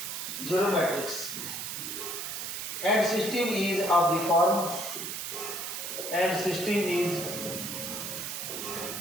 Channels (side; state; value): right; noise; hiss, 5 dB below the sound